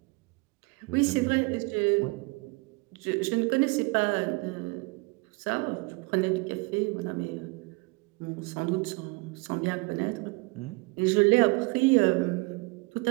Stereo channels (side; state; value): left; quieter; 27.7 dB